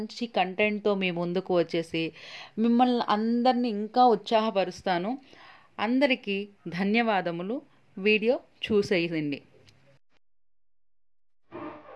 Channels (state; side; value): identical; both; correlation 1.00